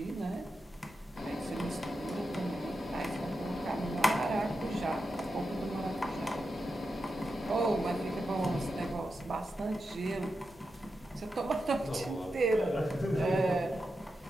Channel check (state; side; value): normal; both; correlation 0.89